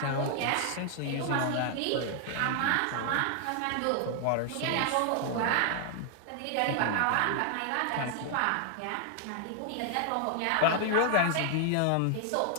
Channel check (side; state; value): both; different; correlation 0.00